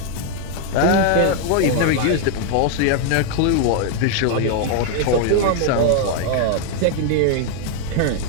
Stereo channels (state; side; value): different; both; correlation 0.00